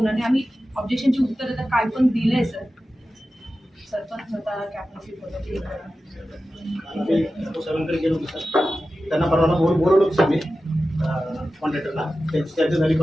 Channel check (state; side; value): normal; both; correlation 0.94